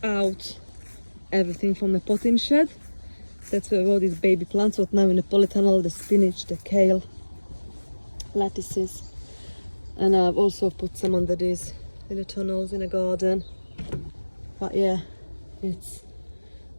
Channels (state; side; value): inverted; both; correlation -1.00